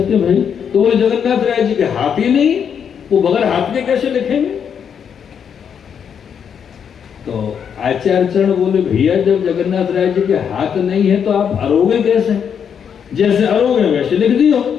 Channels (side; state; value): right; quieter; 7.6 dB